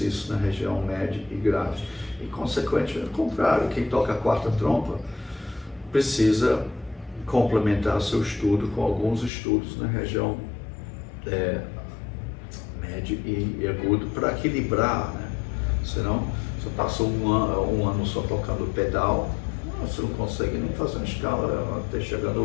na região média e grave. E, consequentemente, ao contrário, quem toca a quarta trompa precisa complementar seu estudo com alguns estudos na região médio e agudo para equilibrar, né? Senão, você passa um ano só tocando pedal, você não consegue nem fazer uma escala até chegando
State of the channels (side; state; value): right; drops out; at 9.3 s